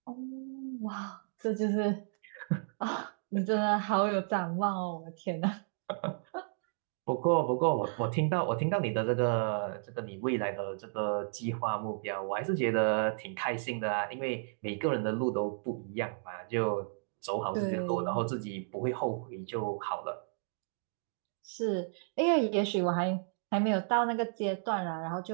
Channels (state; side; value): silent; left; digital silence